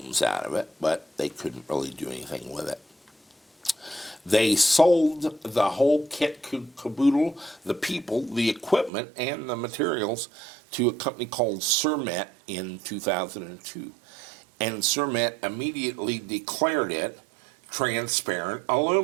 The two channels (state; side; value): drops out; left; at 8.9 s